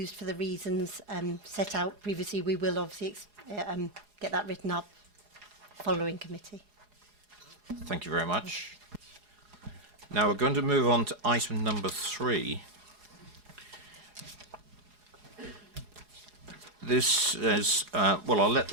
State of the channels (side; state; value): left; late; 4.8 ms